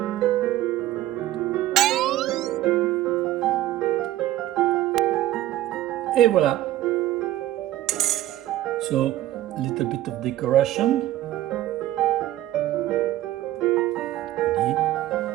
et voilà. So, a little bit of decoration. Ready.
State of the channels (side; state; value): left; quieter; 14.4 dB